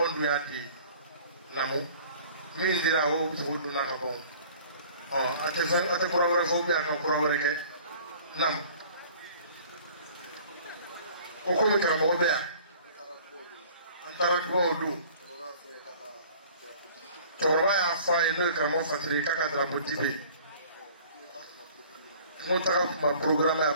we are the Namu. Means there are hopes who do not have. At the Pura Phobia and Pura Nam Okomika Mobea and Tarago. Toraya fine welcome of Africa Trapotibi. Montara my program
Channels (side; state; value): both; inverted; correlation -0.50